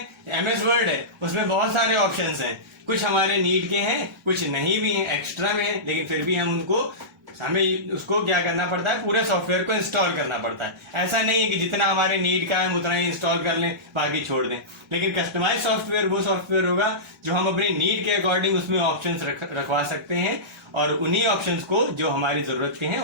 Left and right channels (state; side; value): normal; both; correlation -0.18